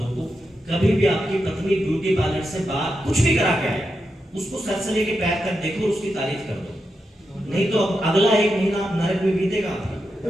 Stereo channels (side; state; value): both; normal; correlation 0.87